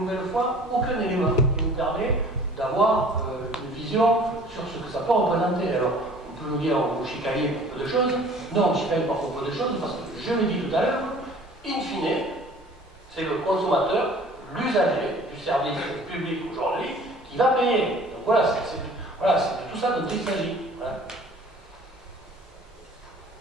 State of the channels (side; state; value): both; normal; correlation 0.49